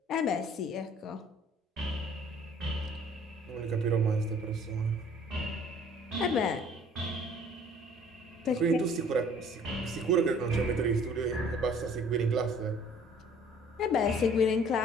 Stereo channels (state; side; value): normal; both; correlation 0.54